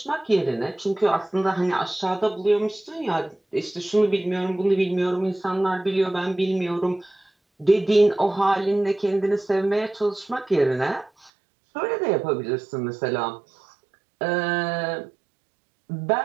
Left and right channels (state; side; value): drops out; left; at 11.3 s